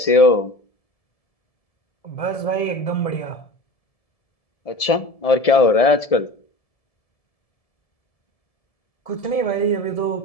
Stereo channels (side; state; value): right; late; 1.7 ms